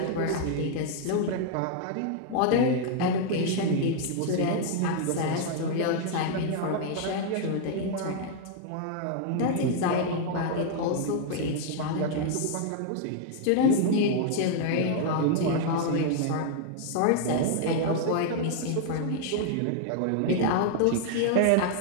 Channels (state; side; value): different; both; correlation 0.00